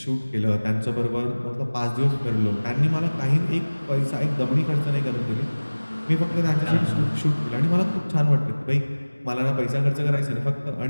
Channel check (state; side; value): inverted; both; correlation -1.00